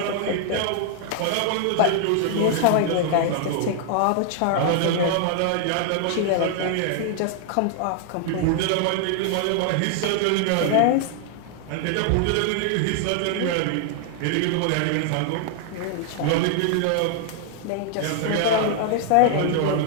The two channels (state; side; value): different; both; correlation 0.00